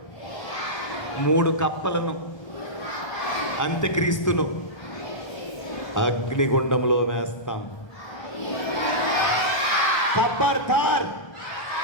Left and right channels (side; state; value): right; late; 1.3 ms